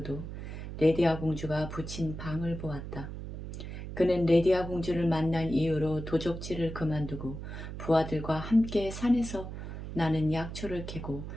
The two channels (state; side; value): noise; right; hum, 8 dB below the sound